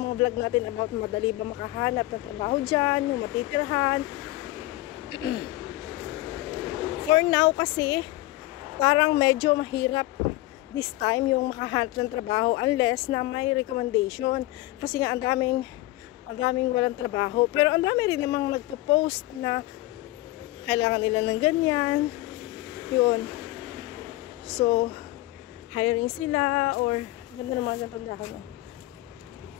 mga vlog natin about madali ba makahanap ng trabaho dyan, yung matitirhan. For now kasi, parang medyo mahirap this time yung makahanap ng trabaho unless na may recommendation. Kasi nga ang daming walang trabaho. Pero ang dami rin namang nagpo-post na kailangan nila ng ganyan. Yun. So, hiring sila or ganda naman ng tandahan.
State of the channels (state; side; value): quieter; right; 18.4 dB